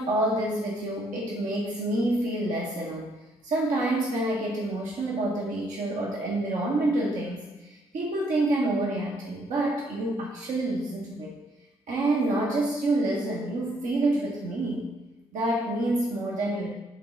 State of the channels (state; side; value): normal; both; correlation 0.69